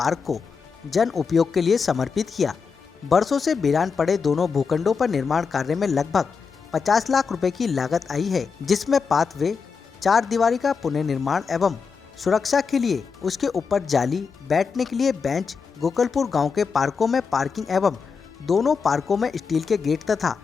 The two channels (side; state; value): right; quieter; 5.5 dB